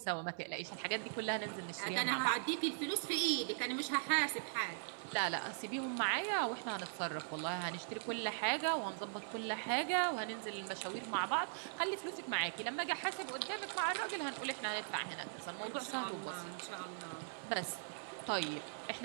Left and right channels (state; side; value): silent; left; digital silence